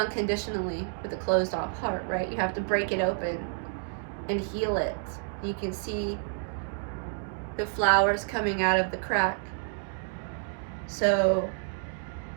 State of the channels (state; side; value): silent; left; digital silence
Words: with a closed off heart, right? You have to break it open and heal it. You can see the flowers coming out of the crack. So